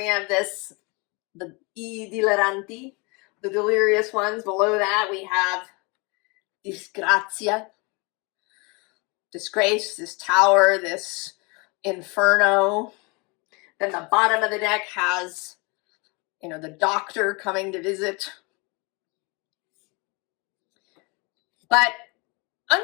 this, the I deliranti, the delirious ones. Below that we have disgrazia, disgrace, this tower, this inferno. Then the bottom of the deck has, you know, the doctor coming to visit. But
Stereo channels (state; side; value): quieter; right; 29.1 dB